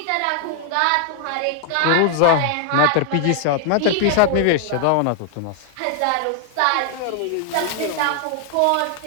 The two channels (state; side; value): different; both; correlation 0.00